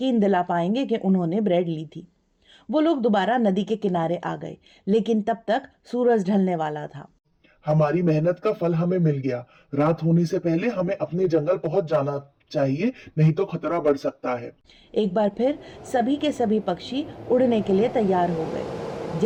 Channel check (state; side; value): identical; both; correlation 1.00